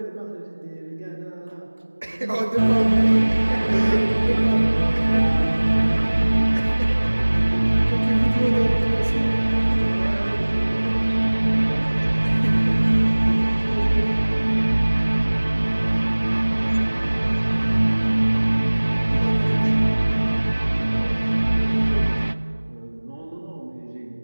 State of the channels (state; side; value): inverted; both; correlation -1.00